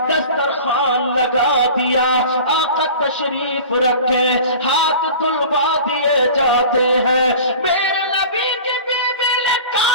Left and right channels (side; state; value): both; inverted; correlation -0.39